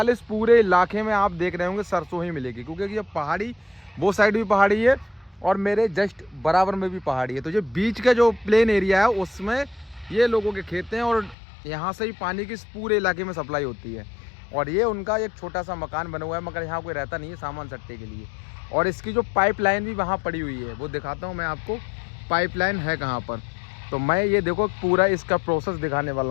इस पूरे इलाके में आप देख रहे होंगे सरसों ही मिलेगी, क्योंकि ये पहाड़ी, वो साइड भी पहाड़ी है और मेरे जस्ट बराबर में भी पहाड़ी है। तो ये बीच का जो प्लेन एरिया है उसमें ये लोगों के खेत हैं, और यहाँ से ही पानी की इस पूरे इलाके में सप्लाई होती है। और ये उनका एक छोटा सा मकान बना हुआ है, मगर यहाँ कोई रहता नहीं है सामान सट्टे के लिए। और इसकी जो पाइपलाइन भी वहाँ पड़ी हुई है, वो दिखाता हूँ मैं आपको, पाइपलाइन है कहाँ पर। तो मैं ये देखो पूरा इसका प्रोसेस दिखाने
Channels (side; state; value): right; drops out; at 11.4 s